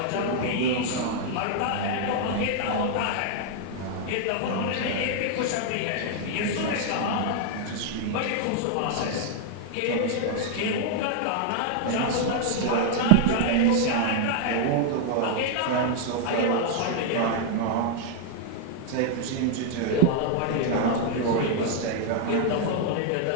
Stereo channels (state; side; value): different; both; correlation 0.00